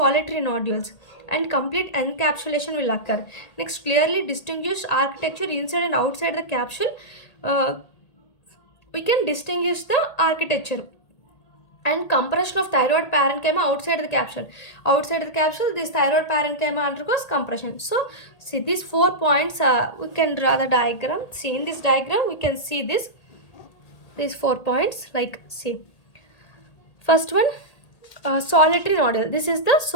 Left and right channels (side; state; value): right; late; 1.8 ms